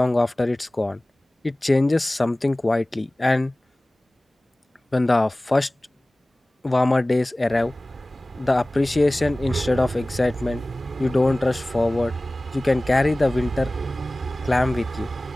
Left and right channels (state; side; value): normal; both; correlation 0.98